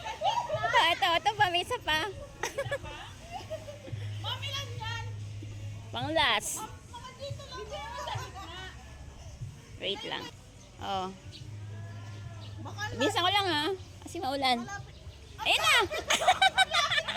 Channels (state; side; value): identical; both; correlation 1.00